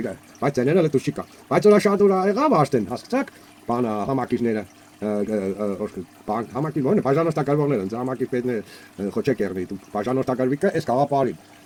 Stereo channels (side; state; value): both; identical; correlation 1.00